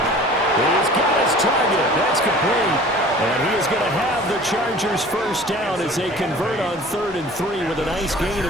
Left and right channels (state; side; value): normal; both; correlation 0.45